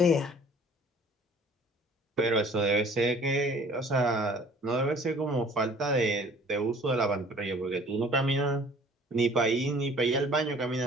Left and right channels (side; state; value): both; normal; correlation 0.52